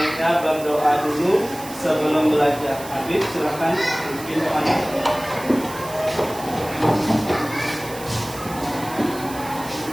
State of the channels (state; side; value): noise; right; hiss, 15 dB below the sound